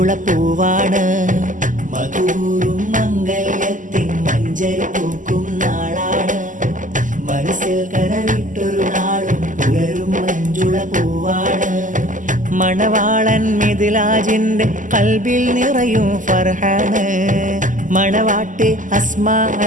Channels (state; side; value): late; left; 0.37 ms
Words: പൂവാണ് മധുവൂറും മംഗല്യത്തിൻ മഞ്ചരി പൂക്കും നാളാണ് മനസ്സിൽ കനവിട്ടൊരു നാളും പുലരും മഞ്ജുള പൂവാണ് മണവാളൻ മിദ്ലാജിന്റെ കൽബിൽ നിറയും ഫർഹാണ് മണവാട്ടി അസ്മാ